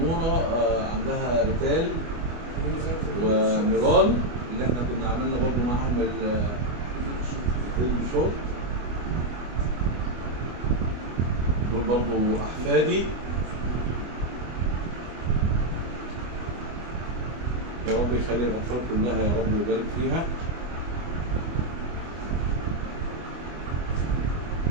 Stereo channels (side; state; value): left; late; 24 ms